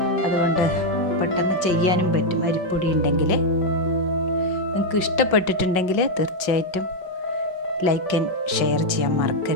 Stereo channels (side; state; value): right; late; 5.4 ms